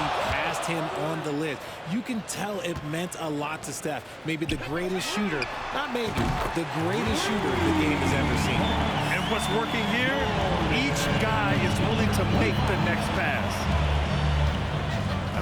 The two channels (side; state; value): both; identical; correlation 1.00